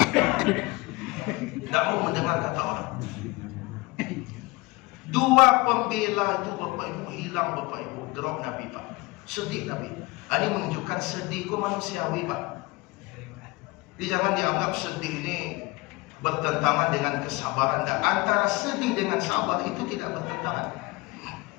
tak mau mendengar kata orang. Dua pembela itu Bapak Ibu hilang Bapak Ibu, drop Nabi Pak. Sedih Nabi. Ini menunjukkan sedih ku manusiawi Pak. Jadi jangan dianggap sedih ini bertentangan dengan kesabaran. Dan antara sedih dengan sabar itu tidak bertentangan.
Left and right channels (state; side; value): quieter; right; 23.2 dB